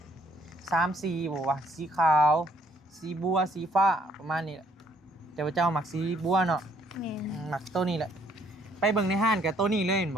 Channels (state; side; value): normal; both; correlation 0.66